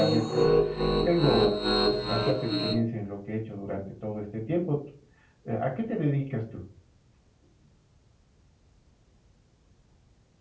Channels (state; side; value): identical; both; correlation 1.00